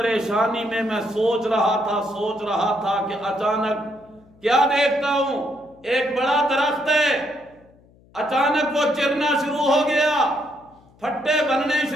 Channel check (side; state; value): left; noise; hum, 29 dB below the sound